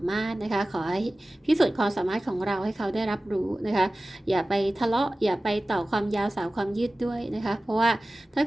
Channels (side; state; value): both; normal; correlation 0.96